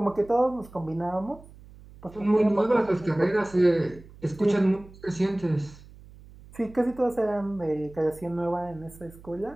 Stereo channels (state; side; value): noise; right; hum, 21 dB below the sound